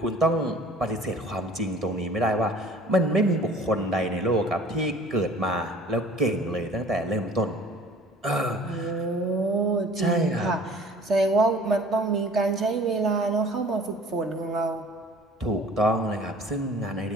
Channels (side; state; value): both; normal; correlation 0.49